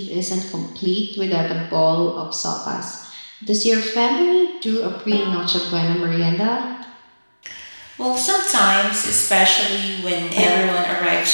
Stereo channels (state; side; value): inverted; both; correlation -1.00